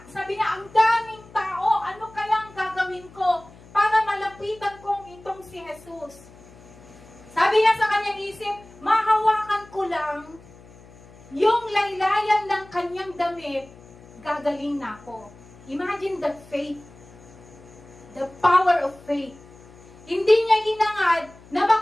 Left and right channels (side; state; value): left; noise; hum, 22 dB below the sound